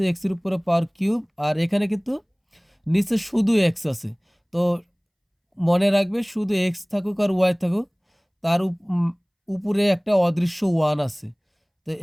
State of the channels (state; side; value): identical; both; correlation 1.00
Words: এক্সের উপরে পাওয়ার কিউব, আর এখানে কিন্তু নিচে শুধু এক্স আছে, তো মনে রাখবে শুধু এক্স থাকুক আর ওয়াই থাকুক, তার উপরে একটা অদৃশ্য 1 আছে, তো